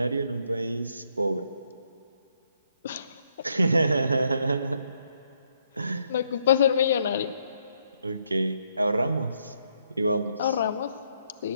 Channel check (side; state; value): both; inverted; correlation -0.73